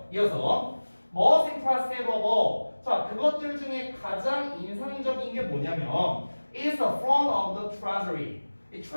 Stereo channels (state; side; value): inverted; both; correlation -1.00